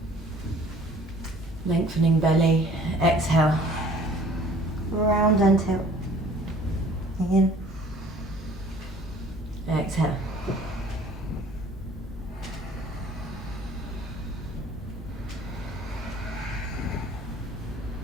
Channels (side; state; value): both; normal; correlation 0.52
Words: Lengthening belly. Exhale. Round and tilt. In. Exhale.